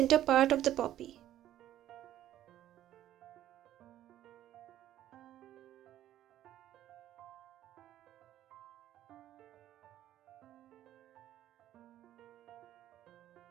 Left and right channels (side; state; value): left; quieter; 12.5 dB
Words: part of the poppy.